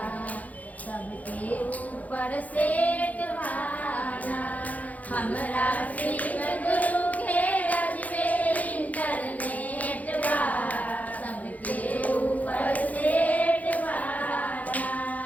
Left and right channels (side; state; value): right; late; 0.076 ms